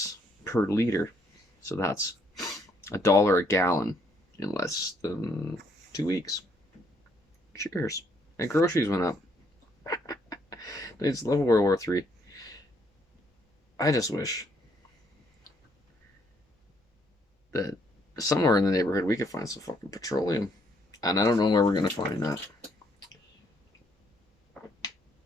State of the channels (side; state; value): both; normal; correlation 0.70